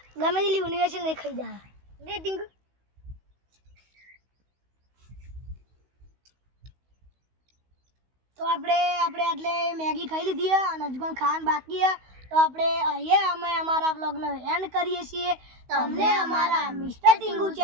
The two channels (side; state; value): left; late; 16 ms